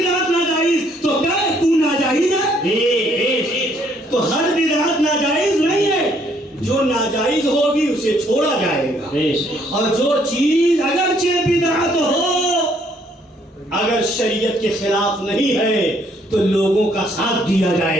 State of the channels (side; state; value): both; normal; correlation 0.67